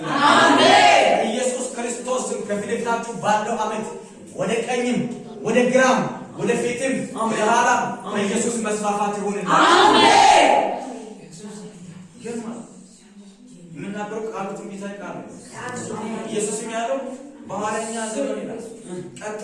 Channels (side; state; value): both; identical; correlation 1.00